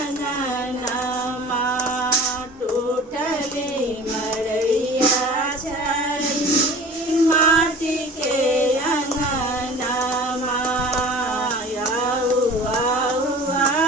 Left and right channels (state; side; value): normal; both; correlation 0.42